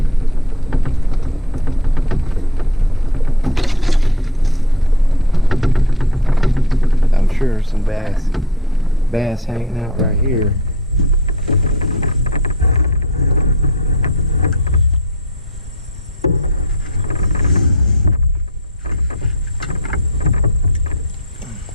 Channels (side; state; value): both; normal; correlation 0.38